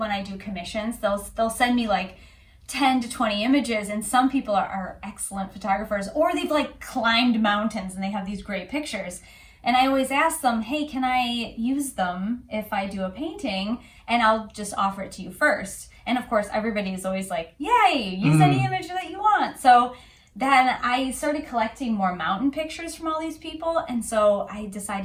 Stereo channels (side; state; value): both; identical; correlation 1.00